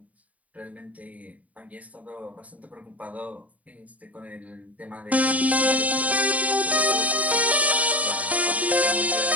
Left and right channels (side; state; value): left; late; 0.071 ms